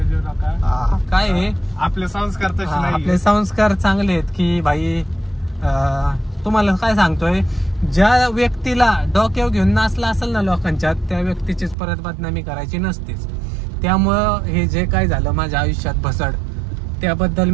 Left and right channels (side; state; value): left; drops out; at 11.8 s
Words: काय आहे, आपले संस्कार तसे नाही. आपले संस्कार चांगले आहेत की भाई. तुम्हाला काय सांगतोय, ज्या व्यक्तीला डोक्यावर घेऊन नाचला असेल ना लोकांच्या, त्या व्यक्तीचीच परत बदनामी करायची नसतेच. त्यामुळं हे जे काय झालं माझ्या आयुष्यात भसड, त्याबद्दल